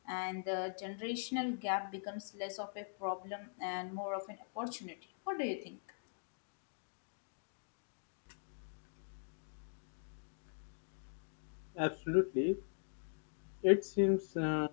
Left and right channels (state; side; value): silent; right; digital silence